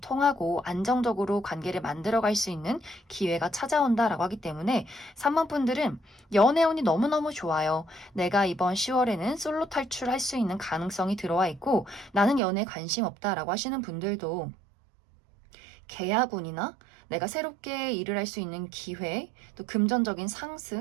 통하고 안정적으로 관계를 만들어갈 수 있는 기회가 찾아온다라고 하기 때문에 3번 분들은 연애운이 너무너무 좋아요. 내가 이번 10월에는 솔로 탈출할 수 있는 가능성이 들어와 있고 나는 연애에 관심 없다라고 하시는 분들도 계약운이나 내가 새롭게 일을 할 수 있는 기회, 또 금전적인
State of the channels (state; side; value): drops out; left; at 12.4 s